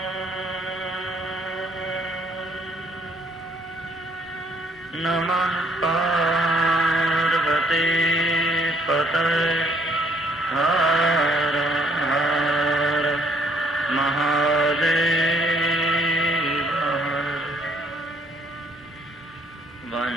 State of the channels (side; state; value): both; normal; correlation 0.65